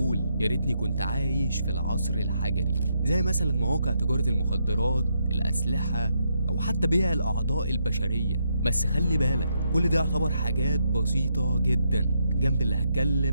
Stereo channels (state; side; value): inverted; both; correlation -0.78